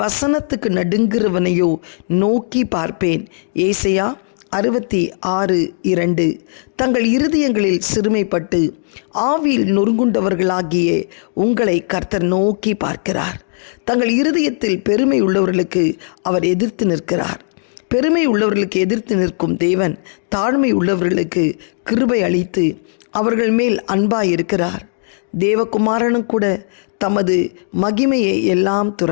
வசனத்துக்கு நடுங்குறவனையோ நோக்கி பார்ப்பேன். ஏசாயா 66:2. தங்கள் இருதயங்களில் சிறுமைப்பட்டு ஆவியில் நொறுங்குண்டவர்களாகிய உங்களை கர்த்தர் நோக்கி பார்க்கிறார். தங்கள் இருதயத்தில் பெருமை உள்ளவர்களுக்கு அவர் எதிர்த்து நிற்கிறார். பெருமை உள்ளவர்களுக்கு எதிர்த்து நிற்கும் தேவன் தாழ்மை உள்ளவர்களுக்கு கிருபை அளித்து அவர்கள் மேல் அன்பாயிருக்கிறார். தேவகுமாரனும் கூட தமது மகிமையை எல்லாம்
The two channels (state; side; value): silent; right; 66 dB below the other